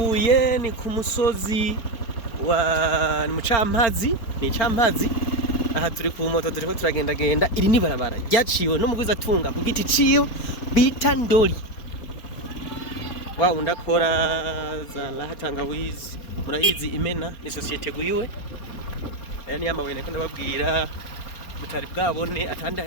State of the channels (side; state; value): right; late; 4.3 ms